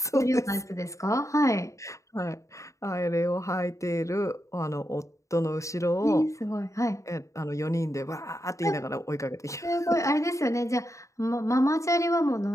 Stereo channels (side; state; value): right; late; 0.15 ms